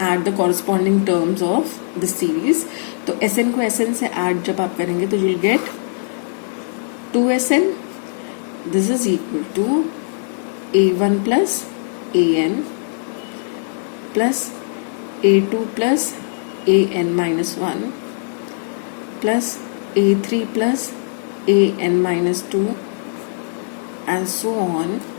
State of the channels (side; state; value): right; silent; digital silence